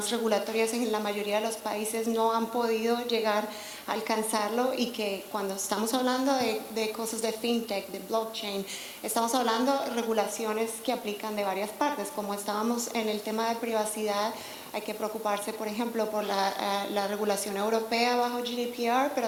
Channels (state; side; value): identical; both; correlation 1.00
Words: regulatorias en la mayoría de los países no han podido llegar a alcanzarlo y que cuando estamos hablando de cosas de FinTech, de blockchain, estamos hablando de regulaciones que aplican de varias partes, como estábamos en el tema de privacidad. Hay que preocuparse, por ejemplo, por la regulación europea bajo GDPR,